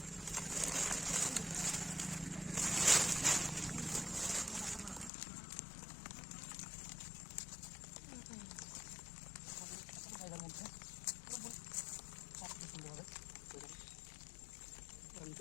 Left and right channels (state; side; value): drops out; right; at 5.1 s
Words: জায়গার মধ্যে সুন্দরভাবে